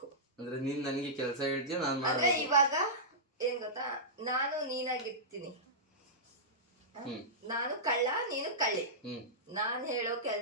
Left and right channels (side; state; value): both; normal; correlation -0.15